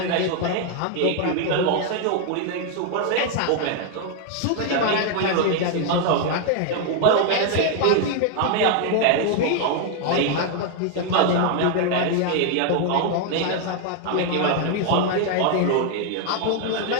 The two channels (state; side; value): different; both; correlation 0.00